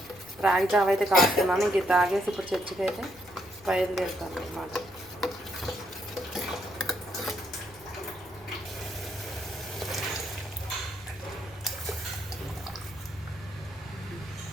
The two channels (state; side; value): noise; left; rumble, 24 dB below the sound